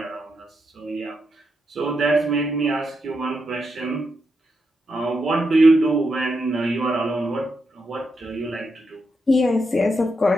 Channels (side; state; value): both; normal; correlation 0.84